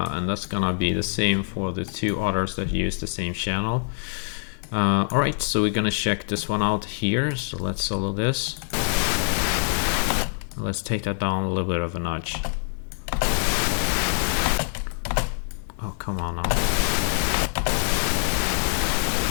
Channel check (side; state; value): right; silent; digital silence